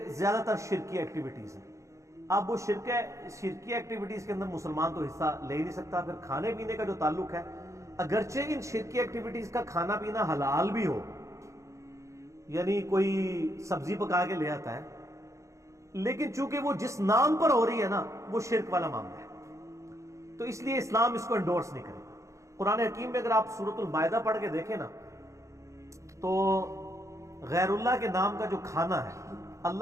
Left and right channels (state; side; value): late; left; 0.15 ms